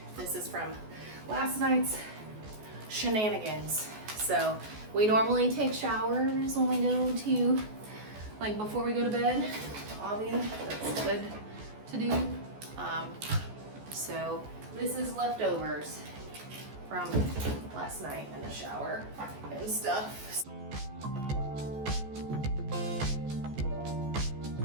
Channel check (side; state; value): left; late; 14 ms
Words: This is from last night's shenanigans. So we normally take showers when we go to, like before we go to bed. Obviously, that's good to do. So this is leftovers from last night in the shower and stuff.